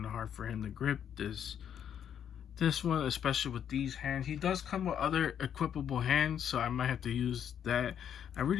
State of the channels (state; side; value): quieter; right; 9.0 dB